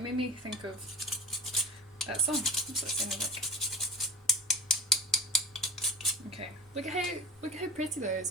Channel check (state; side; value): normal; both; correlation 0.33